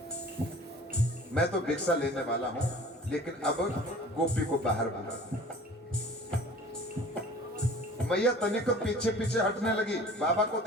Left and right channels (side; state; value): both; normal; correlation 0.45